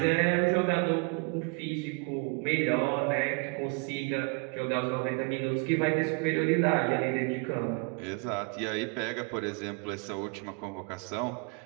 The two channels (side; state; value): left; quieter; 33.6 dB